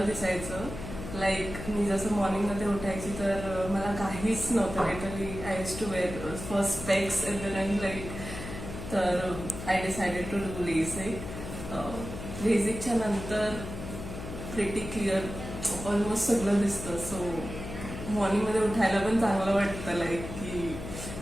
दिसायचं. लाईक मी जसं मॉर्निंगमध्ये उठायची तर मला काहीच नव्हतं. Literally I use to wear first specs in the run like. तर I decided to do LASIK. लेझिकच्या नंतर प्रिटी क्लिअर ऑलमोस्ट सगळं दिसतं. सो मॉर्निंगमध्ये उठायला पण चांगलं वाटतं. लाईक की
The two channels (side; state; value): left; noise; hum, 9 dB below the sound